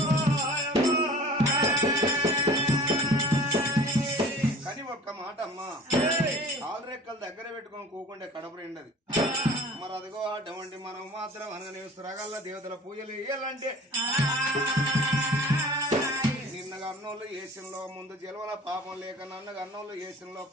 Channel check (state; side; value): normal; both; correlation 0.45